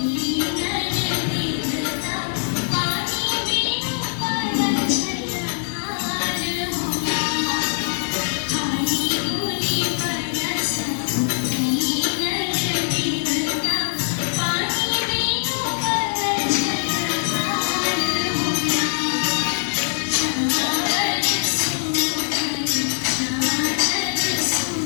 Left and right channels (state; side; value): silent; right; digital silence